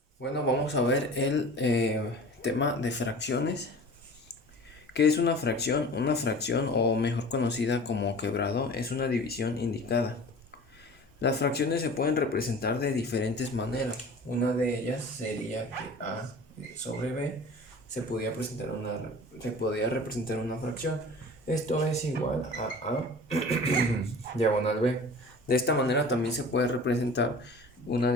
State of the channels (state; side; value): normal; both; correlation 0.40